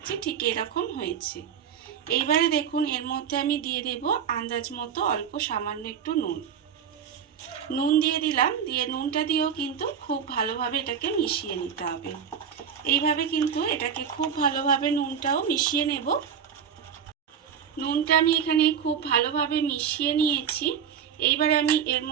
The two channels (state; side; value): quieter; left; 7.7 dB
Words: ঠিক এরকম হয়েছে। এইবারে দেখুন এর মধ্যে আমি দিয়ে দেব আন্দাজ মতো অল্প সামান্য একটু নুন দিয়ে দিলাম। দিয়ে নুনটা দিয়েও কিন্তু খুব ভালোভাবে এটাকে মিশিয়ে নিতে হবে। এইভাবে কিন্তু এটাকে খুব ভালোভাবে নুনটাও মিশিয়ে নেব। নুনটা আমি এখানে খুব ভালোভাবে মিশিয়ে নিয়েছি। এইবারে আমি এর